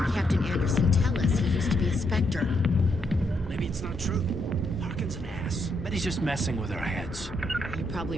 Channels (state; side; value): normal; both; correlation 0.77